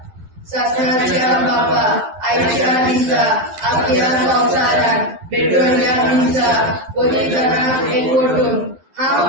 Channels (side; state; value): left; late; 12 ms